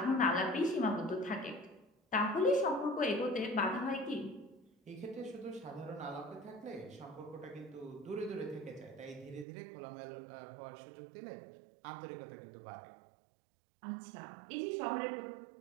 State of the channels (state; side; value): drops out; left; at 9.5 s